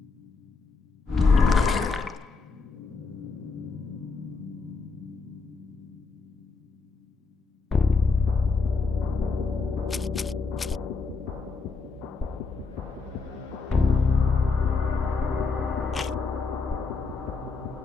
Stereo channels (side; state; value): right; quieter; 4.4 dB